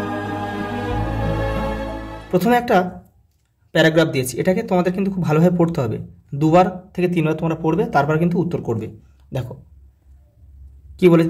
প্রথমে একটা প্যারাগ্রাফ দিয়েছি, এটাকে তোমাদের কিন্তু খুব ভালোভাবে পড়তে হবে। 2বার থেকে 3বার তোমরা পড়বে, তারপর কিন্তু উত্তর করবে। দেখো কি বলেছে,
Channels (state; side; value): identical; both; correlation 1.00